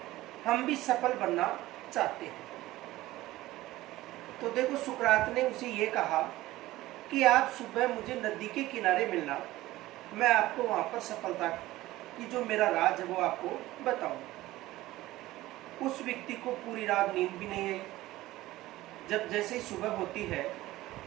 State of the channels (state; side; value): quieter; left; 17.0 dB